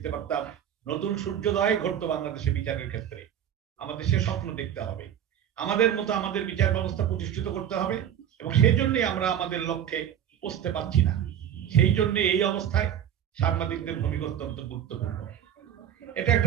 পারতাম, নতুন সূর্যোদয় ঘটতো বাংলাদেশে বিচারের ক্ষেত্রে। আমাদের সে স্বপ্ন দেখতে হবে, আমাদের মতো আমাদের বিচার ব্যবস্থা প্রতিষ্ঠিত করতে হবে, এবং সেই জন্যই আমরা আমাদের লক্ষ্যে পৌঁছতে পারছি না। সেই জন্য এই অবস্থায় সাংবাদিকদের ভূমিকা অত্যন্ত গুরুত্বপূর্ণ। এটা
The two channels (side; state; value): left; quieter; 9.9 dB